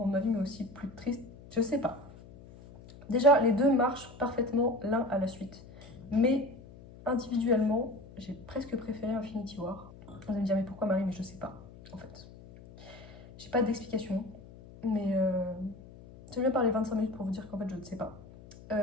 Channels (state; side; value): noise; left; hum, 19 dB below the sound